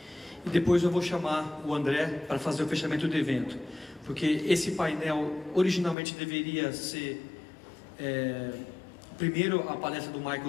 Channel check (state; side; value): drops out; right; at 6.0 s